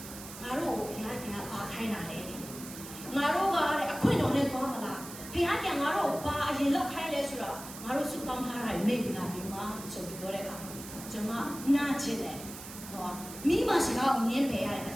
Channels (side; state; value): right; noise; hiss, 13 dB below the sound